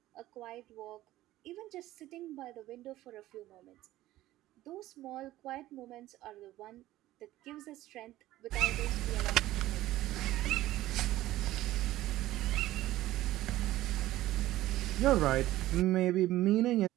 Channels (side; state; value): left; quieter; 15.5 dB